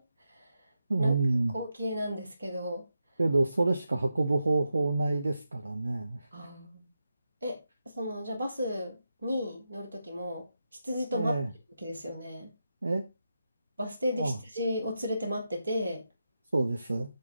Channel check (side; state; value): both; inverted; correlation -0.87